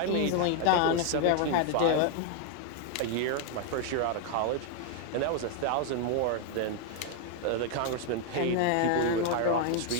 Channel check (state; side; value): different; both; correlation 0.00